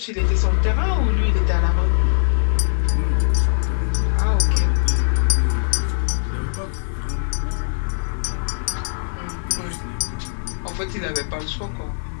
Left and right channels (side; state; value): right; silent; digital silence